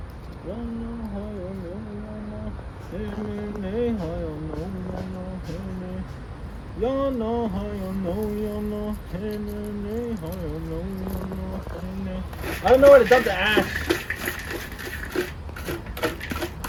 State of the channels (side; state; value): both; identical; correlation 1.00